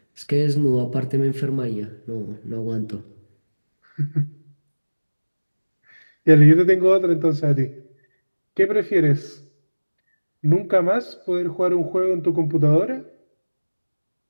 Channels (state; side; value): inverted; both; correlation -1.00